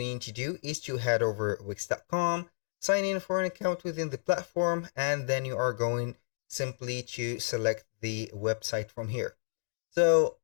you need to do is to head over wix.com, sign in for an account within the platform, and then you are going simply to select the website from here. So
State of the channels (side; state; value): right; silent; digital silence